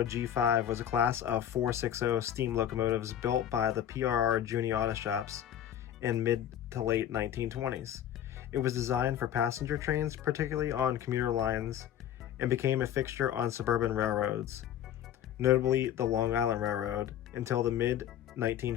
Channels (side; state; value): right; quieter; 10.4 dB